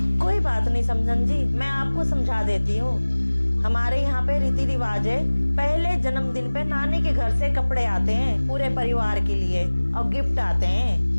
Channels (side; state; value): both; inverted; correlation -1.00